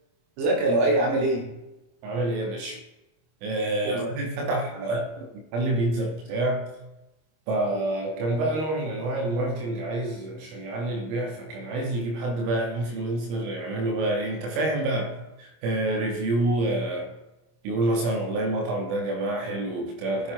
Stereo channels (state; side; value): late; left; 26 ms